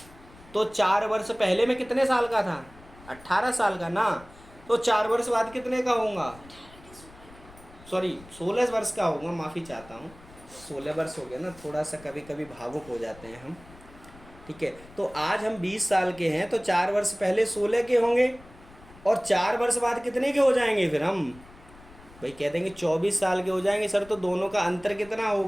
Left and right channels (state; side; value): noise; left; rumble, 22 dB below the sound